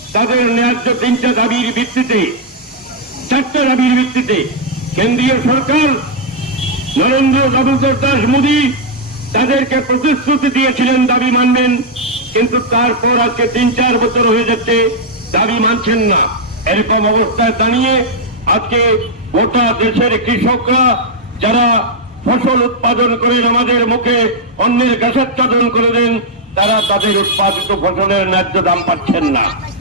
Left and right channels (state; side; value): normal; both; correlation -0.03